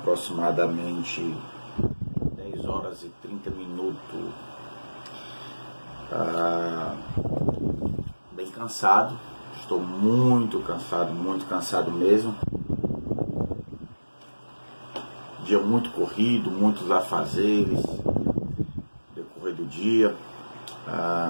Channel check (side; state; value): both; inverted; correlation -1.00